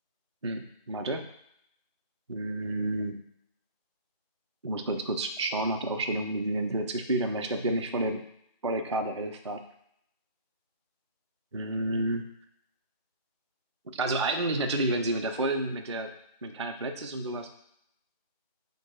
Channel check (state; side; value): inverted; both; correlation -0.42